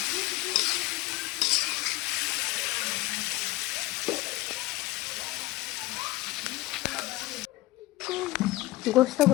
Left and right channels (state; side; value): quieter; right; 18.9 dB